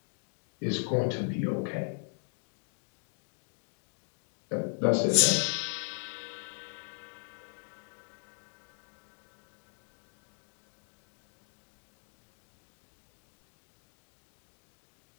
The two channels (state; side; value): silent; right; 53 dB below the other